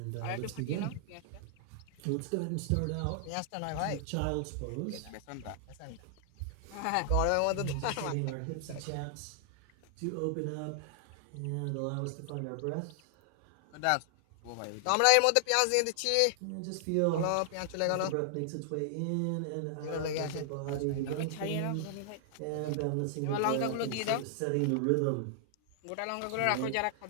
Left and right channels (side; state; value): both; different; correlation -0.01